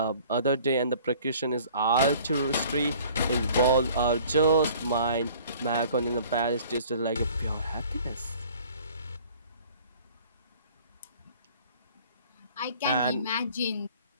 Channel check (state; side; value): inverted; both; correlation -0.51